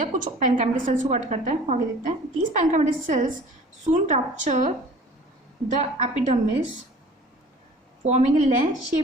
कुछ पैनकाइमेटस सेल्स को कट करता है, आगे देखते हैं। These parenchymatous cells soon rupture the epidermis forming a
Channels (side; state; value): both; normal; correlation 0.47